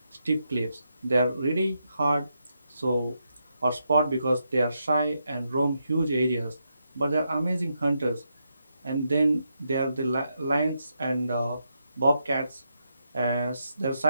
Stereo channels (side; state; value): both; inverted; correlation -0.82